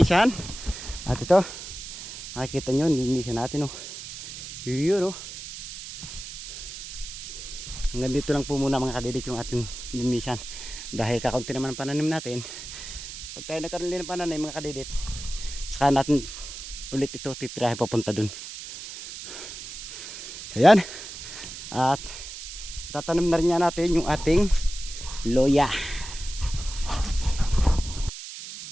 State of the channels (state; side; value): noise; right; hiss, 10 dB below the sound